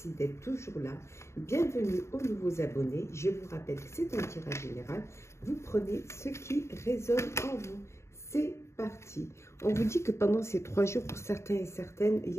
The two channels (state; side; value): late; right; 0.13 ms